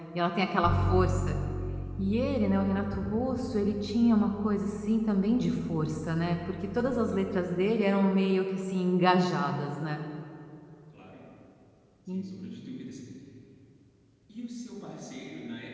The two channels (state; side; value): identical; both; correlation 1.00